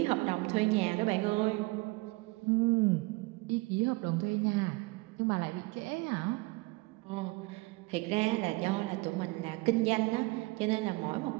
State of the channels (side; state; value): left; quieter; 24.2 dB